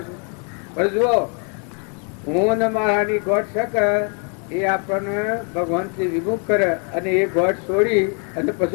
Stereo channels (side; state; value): right; quieter; 39.5 dB